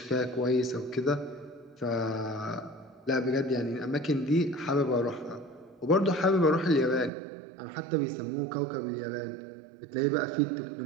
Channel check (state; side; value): drops out; left; at 7.1 s